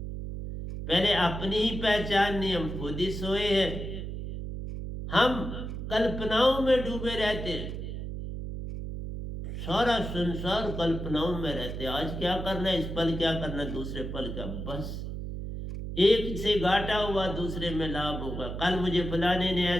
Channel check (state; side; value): noise; right; hum, 6 dB below the sound